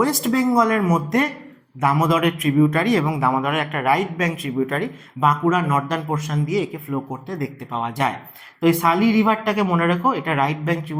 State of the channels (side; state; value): both; identical; correlation 1.00